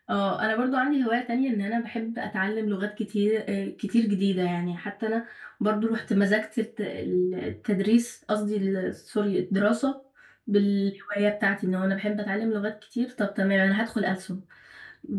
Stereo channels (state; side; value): identical; both; correlation 1.00